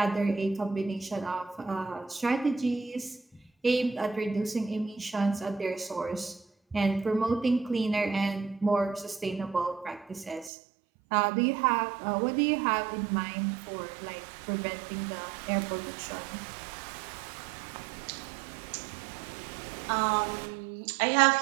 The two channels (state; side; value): drops out; left; at 10.5 s